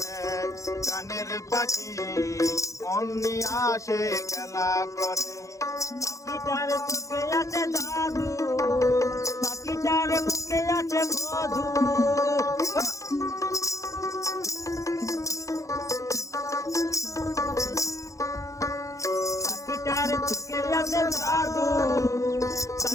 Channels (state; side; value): late; right; 0.15 ms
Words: গানের পাখি মন নিয়ে আসে খেলা করে। পাখিটার চোখে আছে জাদু, পাখিটার মুখে আছে মধু। পাখিটার চোখে আছে জাদু,